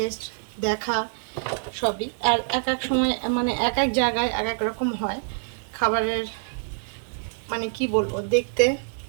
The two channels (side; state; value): left; silent; 61 dB below the other